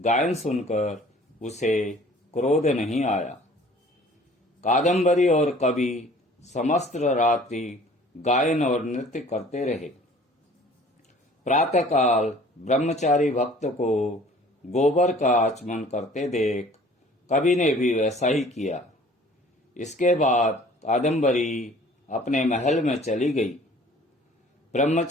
सुनकर उसे क्रोध नहीं आया। कादम्बरी और कवि समस्त रात्रि गायन और नृत्य करते रहे। प्रातःकाल ब्रह्मचारी भक्त को गोबर का आचमन करते देख कवि ने भी वैसा ही किया। इसके बाद कादम्बरी अपने महल में चली गई।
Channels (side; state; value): both; normal; correlation 0.51